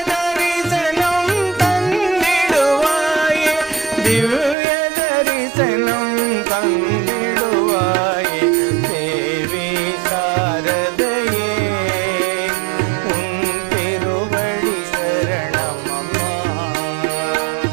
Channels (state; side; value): drops out; left; at 4.5 s